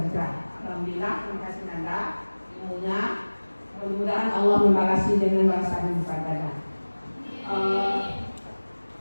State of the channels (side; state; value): both; inverted; correlation -1.00